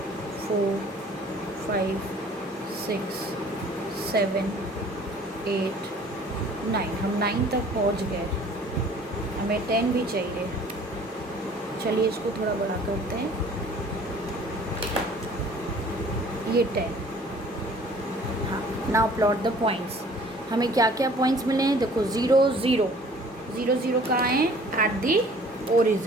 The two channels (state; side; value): normal; both; correlation 0.52